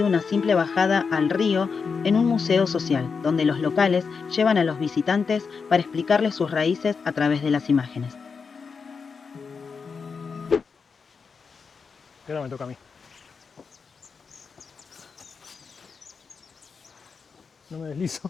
una simple bajada al río en un museo social, donde los locales llevan a los visitantes para explicarles sus raíces a través de las imágenes. Ahora me toca a mí. No me deslizo.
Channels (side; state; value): right; quieter; 5.4 dB